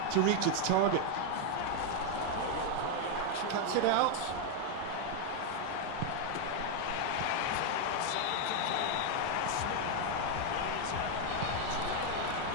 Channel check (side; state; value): both; different; correlation 0.01